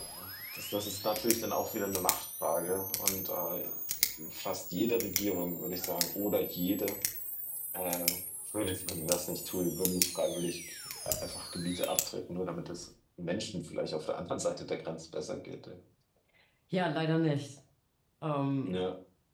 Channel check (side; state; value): both; identical; correlation 1.00